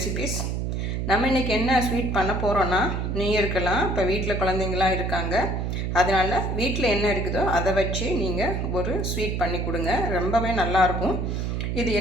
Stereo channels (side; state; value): right; noise; hum, 1 dB below the sound